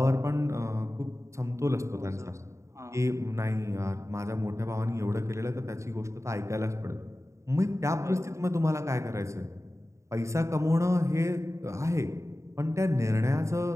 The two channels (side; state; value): left; late; 0.14 ms